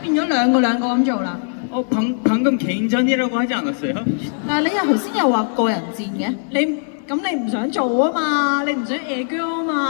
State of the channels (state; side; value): silent; right; digital silence